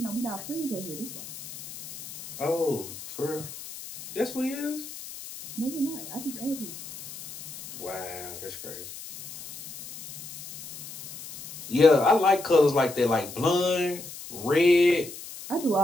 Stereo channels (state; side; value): noise; left; hiss, 13 dB below the sound